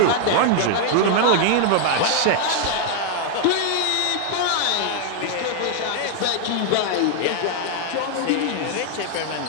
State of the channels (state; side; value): different; both; correlation 0.00